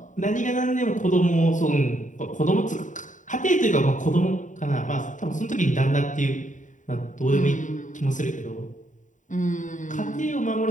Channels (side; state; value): right; late; 0.37 ms